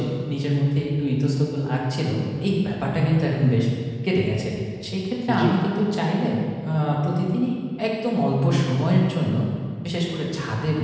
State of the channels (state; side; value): identical; both; correlation 1.00